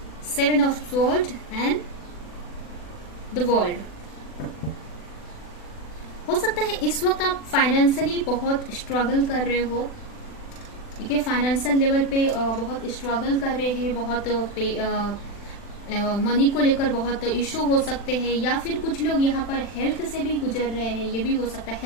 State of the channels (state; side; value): late; right; 40 ms